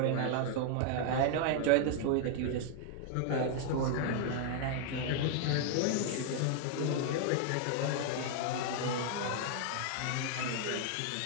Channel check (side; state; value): both; different; correlation 0.00